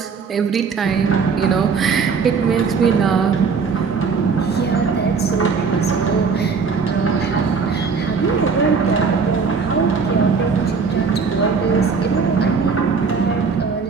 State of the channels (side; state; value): left; quieter; 5.3 dB